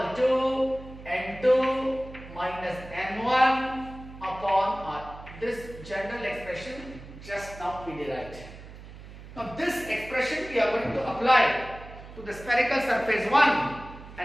to N2 minus N1 upon R. This general expression just now we derived. Now this expression we are going to apply to the spherical surface 1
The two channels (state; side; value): noise; right; hum, 15 dB below the sound